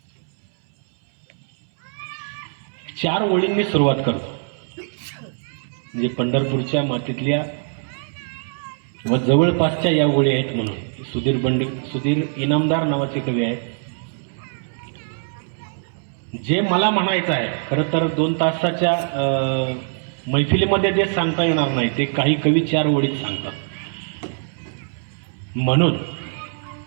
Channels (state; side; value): silent; left; 64 dB below the other